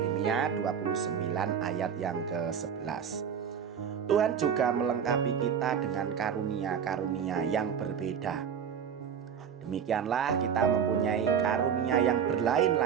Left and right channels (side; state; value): left; quieter; 7.7 dB